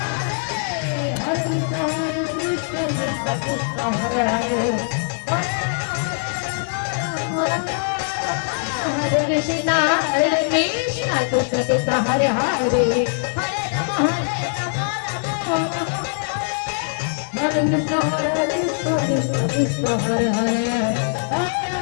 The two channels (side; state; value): right; silent; 64 dB below the other